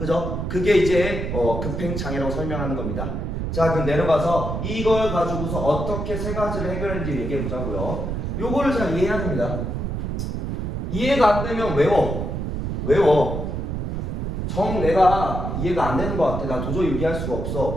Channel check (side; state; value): right; noise; rumble, 3 dB below the sound